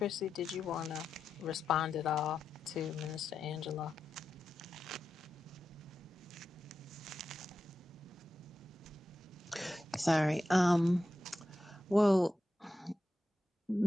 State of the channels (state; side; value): normal; both; correlation 0.90